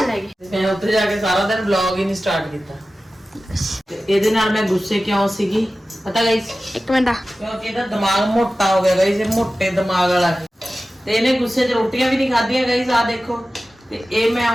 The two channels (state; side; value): normal; both; correlation 0.95